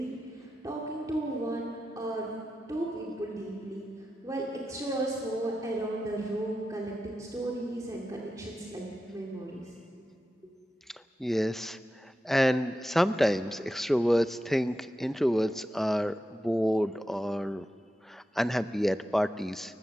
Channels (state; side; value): normal; both; correlation 0.90